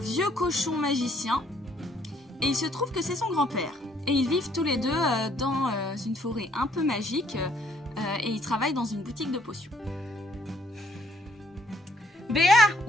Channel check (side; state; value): both; normal; correlation 0.66